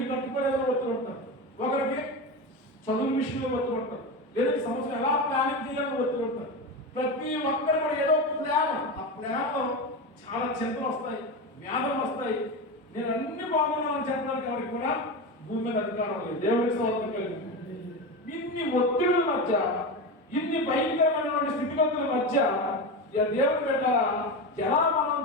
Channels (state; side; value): normal; both; correlation 0.20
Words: కట్టుకోలేదని ఒత్తులు ఉంటారు, ఒకరికి చదువు విషయంలో ఒత్తులు ఉంటారు, లేదంటే సంవత్సరం ఎలా ప్లానింగ్ చేయాలని ఒత్తులు ఉంటారు. ప్రతి ఒక్కరు కూడా ఏదో ప్లాన్, ఆ ప్లాన్లో చాలా చింతలు వస్తాయి, వ్యాధులు వస్తాయి. నేను అన్ని బాగున్నానని చెప్పడానికి ఎవరికి కూడా భూమి మీద అధికారం లేదు. దేవుడి స్తోత్రం కలిగింది. ఇన్ని ఒత్తిడుల మధ్య, ఇన్ని భయంకరమైనటువంటి స్థితిగతుల మధ్య దేవుడు పెట్టారా ఎలా మనం